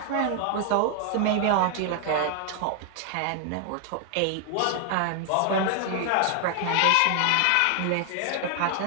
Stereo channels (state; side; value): different; both; correlation 0.00